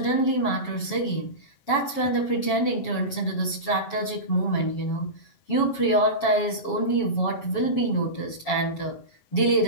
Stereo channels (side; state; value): right; late; 7.2 ms